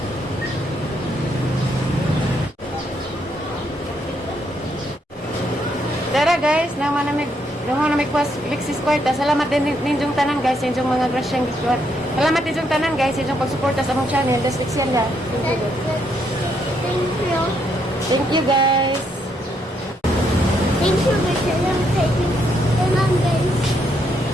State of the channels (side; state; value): both; normal; correlation 0.75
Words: Tara guys, naman na may kwas Lixie Kwarta. Salamat din ninjong tanan guys, ninjong mga grasyang gitwat. Salamat ninjong tanan guys, ninjong pagsuporta sa among channel. Das Lixie la. Thank you. Thank you guys. Thank you, guys.